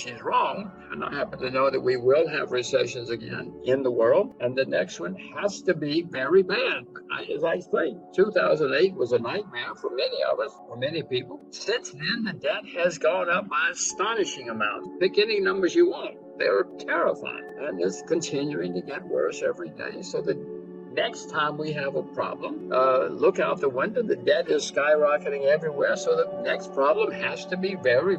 wrong, and I happen to know that we will have recessions again in the world, and the next one has to be very bad. As I say, 2008 was a nightmare for many of us, for many people. Since then, the debt has gone up by astonishing amounts. Pick any numbers you want. They're terrifying, and it's continuing to get worse every day. So the next time we have a problem, look out the window. The debt is skyrocketing everywhere. So the next problem has to be very,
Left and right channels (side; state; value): both; identical; correlation 1.00